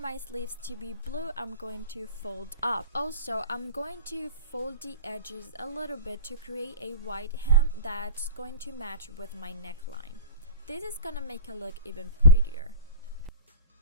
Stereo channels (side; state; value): both; inverted; correlation -0.38